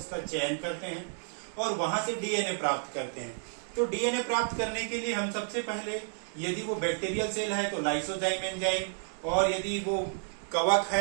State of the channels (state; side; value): silent; left; digital silence